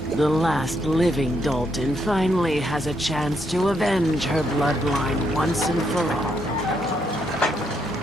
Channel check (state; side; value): normal; both; correlation 0.76